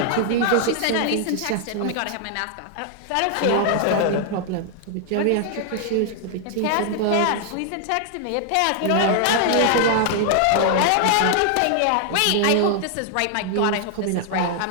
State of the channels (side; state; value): both; different; correlation 0.00